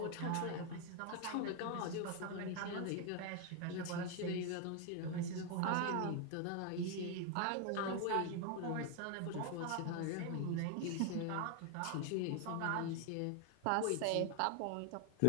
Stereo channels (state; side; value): different; both; correlation 0.01